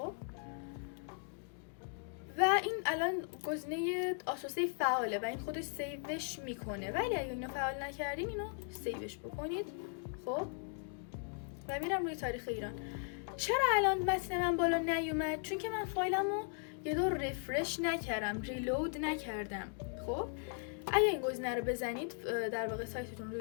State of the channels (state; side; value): silent; right; 53 dB below the other